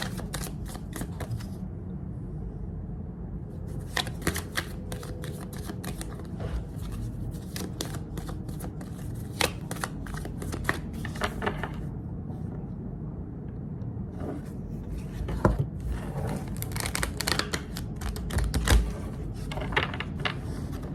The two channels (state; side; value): identical; both; correlation 1.00